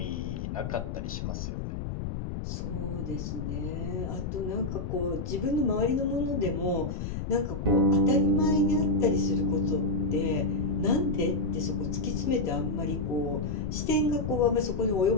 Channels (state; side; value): noise; left; rumble, 5 dB below the sound